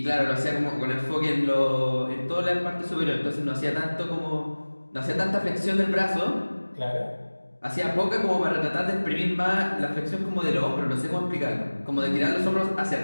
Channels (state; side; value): inverted; both; correlation -1.00